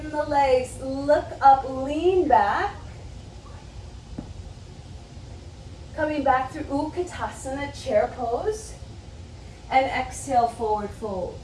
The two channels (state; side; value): identical; both; correlation 1.00